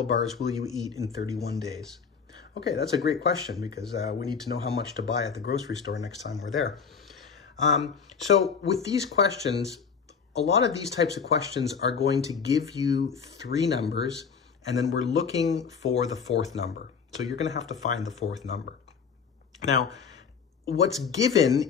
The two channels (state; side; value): quieter; right; 6.1 dB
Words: bars will you eat in 31 days? Okay, that's a great question because we need to know how much to buy at the grocery store next time we're there. So with these questions, a lot of these types of questions are going to give you 3 numbers, and then we're looking for the 4th number. So you're going to have to find the 4th number. Now, what's